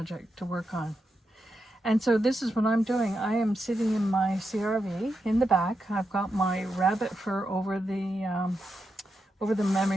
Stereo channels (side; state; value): both; normal; correlation 0.86